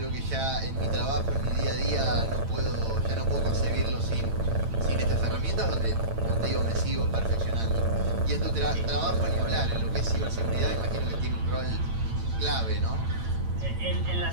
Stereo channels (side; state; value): left; late; 8.9 ms